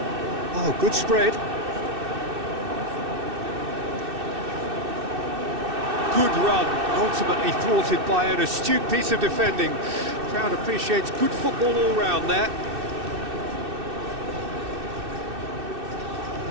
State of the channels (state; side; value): late; left; 2.6 ms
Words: Oh, good spread. Good run, ultimately thwarted by an astute piece of defending. Crowd appreciates good football all round there.